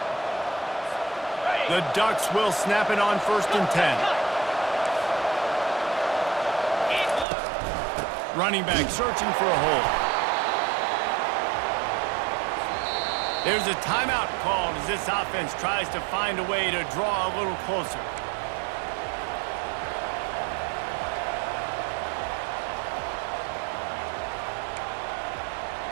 The Ducks will snap it on 1st and 10. Running back searching for a hole. There's a timeout called as this offense tries to find a way to draw a little closer.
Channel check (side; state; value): left; drops out; at 7.2 s